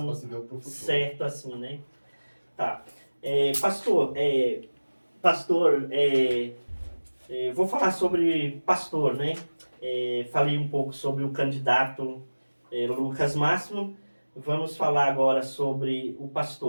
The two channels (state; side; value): inverted; both; correlation -1.00